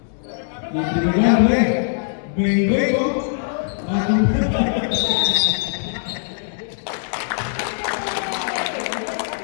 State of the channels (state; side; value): silent; right; digital silence